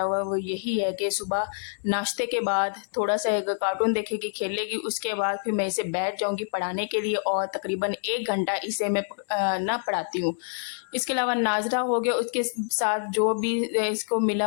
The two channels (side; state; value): right; silent; digital silence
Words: हुआ है वो यही है कि सुबह नाश्ते के बाद थोड़ा-सा एक कार्टून देखेगी, खेलेगी, उसके बाद फिर मैं इसे बैठ जाऊँगी पढ़ाने के लिए और तकरीबन 1 घंटा इसे मैं ना पढ़ाती हूँ। इसके अलावा नाज़रा हो गया, उसके साथ जो भी इसको मिला